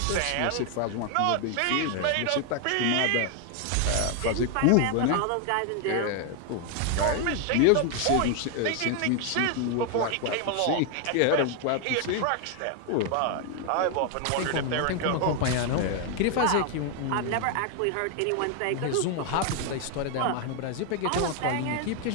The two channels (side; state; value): both; different; correlation 0.01